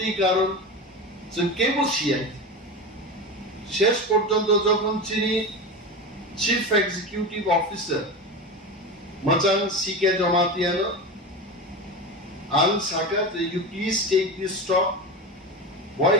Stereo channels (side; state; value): both; normal; correlation 0.24